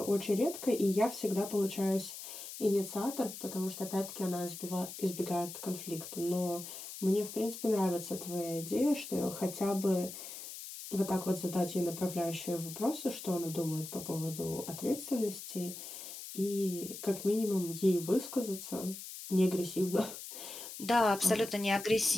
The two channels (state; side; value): noise; left; hiss, 10 dB below the sound